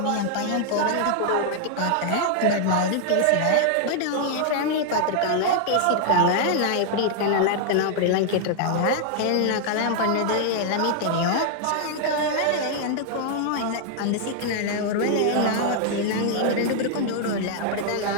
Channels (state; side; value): different; both; correlation 0.00